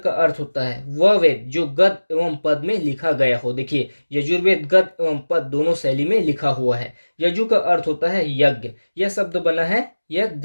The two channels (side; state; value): both; inverted; correlation -1.00